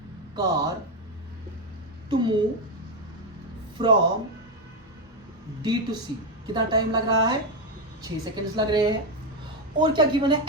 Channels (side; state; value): both; normal; correlation 0.07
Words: car to move from D to C. कितना टाइम लग रहा है? 6 सेकेंड्स लग रहे हैं। और क्या गिवन है?